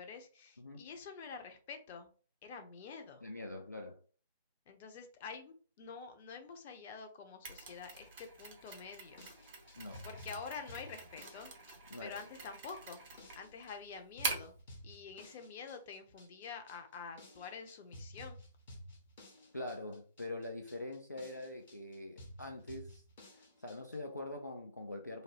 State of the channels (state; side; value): inverted; both; correlation -0.47